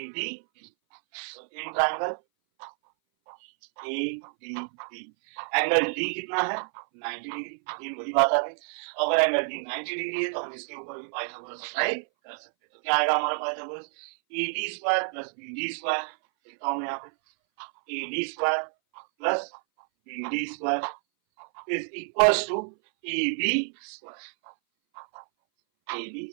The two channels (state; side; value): silent; left; 58 dB below the other